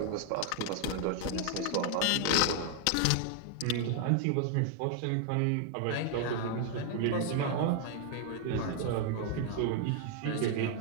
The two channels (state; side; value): different; both; correlation 0.00